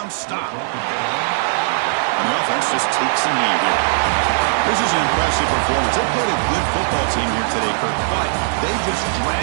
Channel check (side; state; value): left; silent; digital silence